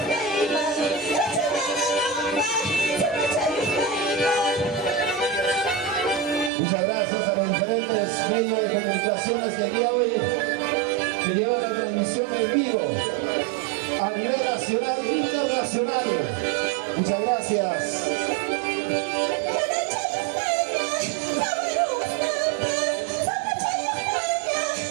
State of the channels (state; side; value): drops out; left; at 6.5 s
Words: Muchas gracias a los diferentes medios de comunicaciones que el día de hoy que llevan la transmisión en vivo a nivel nacional e internacional. Muchas gracias.